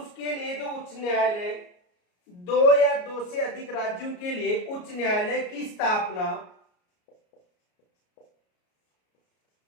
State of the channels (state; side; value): late; right; 33 ms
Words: लिए जो उच्च न्यायालय, दो या दो से अधिक राज्यों के लिए उच्च न्यायालय की स्थापना